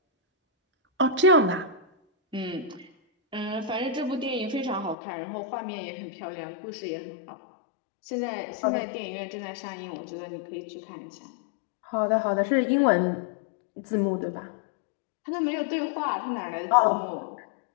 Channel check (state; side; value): drops out; right; at 5.0 s